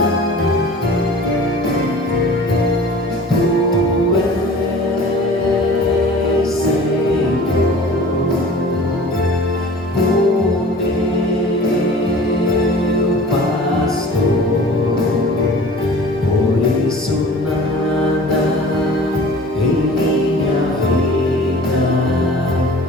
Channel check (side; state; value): both; normal; correlation 0.43